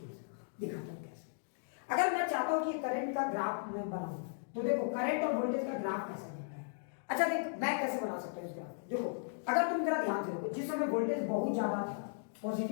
दिखाता हूँ कैसे। अगर मैं चाहता हूँ कि करंट का ग्राफ मैं बनाऊं, तो देखो करंट और वोल्टेज का ग्राफ कैसे बनता है। अच्छा देख, मैं कैसे बना सकता हूँ इस ग्राफ। देखो, अगर तुम जरा ध्यान से देखो, जिस समय वोल्टेज बहुत ज्यादा था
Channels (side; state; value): right; silent; digital silence